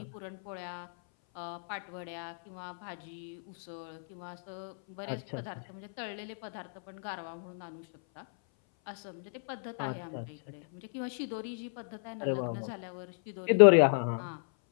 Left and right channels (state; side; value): silent; right; 56 dB below the other